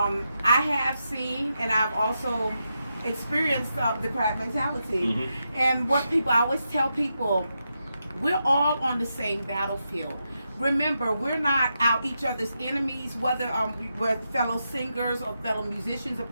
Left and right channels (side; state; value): both; inverted; correlation -0.86